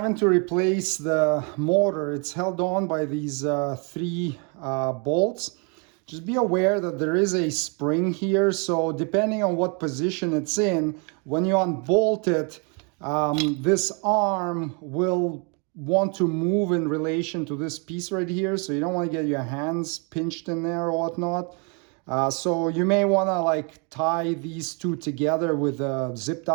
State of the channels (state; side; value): quieter; left; 35.2 dB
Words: to replace the motor, it's held on by these 3 bolts. Just be aware that there is a spring here, so depending on what position it's in, when you unbolt it, this arm will want to move in relation to this piece right here, so you don't want to get your hands pinched in there or whatnot. So you may want to like tie these 2 together with a zip